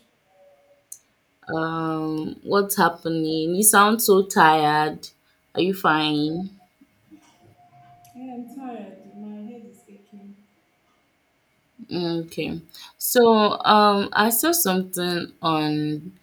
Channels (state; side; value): identical; both; correlation 1.00